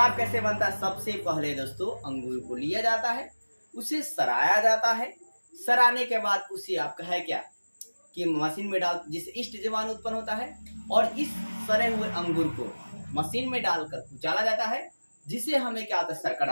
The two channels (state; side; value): inverted; both; correlation -1.00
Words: कैसे बनता है? सबसे पहले दोस्तों अंगूर को लिया जाता है, उसे सराया जाता है। सराने के बाद उसे आपका है क्या कि मशीन में डाल जिससे ईस्ट जीवाणु उत्पन्न होता है और इस सड़े हुए अंगूर को मशीन में डालकर कुचाला जाता है, जिसे हमें क्या होता है?